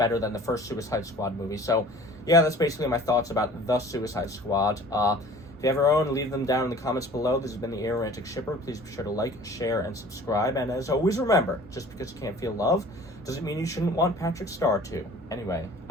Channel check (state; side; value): normal; both; correlation 0.47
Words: than the first Suicide Squad movie. So yeah, that's basically my thoughts about the Suicide Squad. If you have your own, leave them down in the comments below. This has been the Aromantic Shipper. Please be sure to like, share, and subscribe. And as always, remember, just because you can't feel love doesn't mean you shouldn't want Patrick Star to. Anyway,